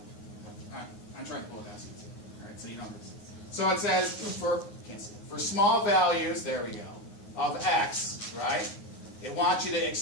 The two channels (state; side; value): late; right; 9.5 ms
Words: I'm trying to pull it out. All right. So you know this. So it says for small values, there we go, of x, right? It wants you to